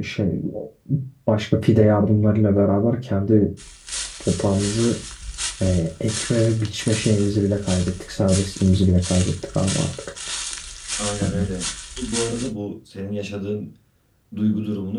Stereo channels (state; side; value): identical; both; correlation 1.00